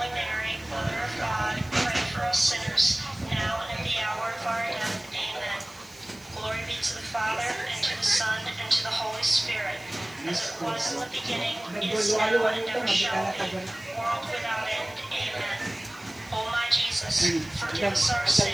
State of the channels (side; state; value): right; noise; hiss, 24 dB below the sound